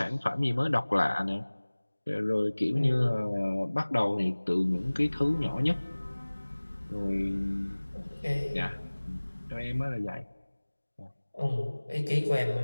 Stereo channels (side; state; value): both; inverted; correlation -1.00